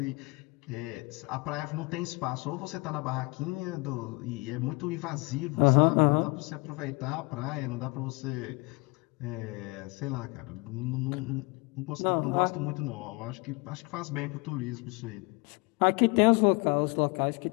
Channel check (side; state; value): right; quieter; 28.0 dB